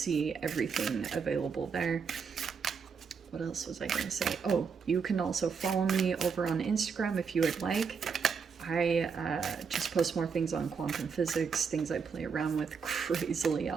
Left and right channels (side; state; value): left; quieter; 5.9 dB